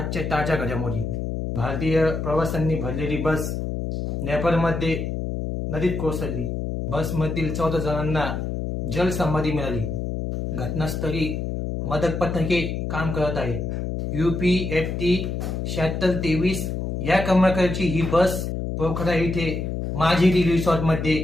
ताज्या घडामोडी. भारतीय प्रवाशांनी भरलेली बस नेपाळमध्ये नदीत कोसळली. बसमधील 14 जणांना जलसमाधी मिळाली. घटनास्थळी मदत पथके काम करत आहे. UPFT 7623 या क्रमांकाची ही बस पोखरा येथे माझेरी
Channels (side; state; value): left; noise; hum, 3 dB below the sound